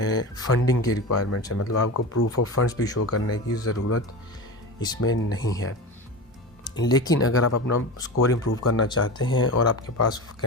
फंडिंग की रिक्वायरमेंट्स है। मतलब आपको प्रूफ ऑफ फंड्स भी शो करने की ज़रूरत इसमें नहीं है। लेकिन अगर आप अपना स्कोर इम्प्रूव करना चाहते हैं और आपके पास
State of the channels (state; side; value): normal; both; correlation 0.27